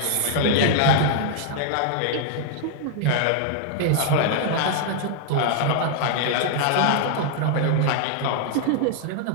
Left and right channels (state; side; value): different; both; correlation -0.01